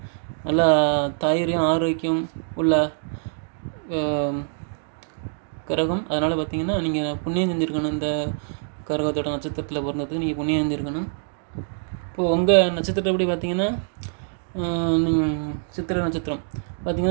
நல்லா தைரியம் ஆரோக்கியம் உள்ள கிரகம். அதனால் பார்த்திங்கன்னா நீங்கள் புண்ணியம் செஞ்சுருக்கணும். இந்த கிரகத்தோட நட்சத்திரத்தில் பிறந்ததுக்கு நீங்கள் புண்ணியம் செஞ்சுருக்கணும். இப்போது உங்கள் நட்சத்திரத்தை எப்படி பார்த்திங்கன்னா சித்திரை நட்சத்திரம்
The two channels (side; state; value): left; silent; digital silence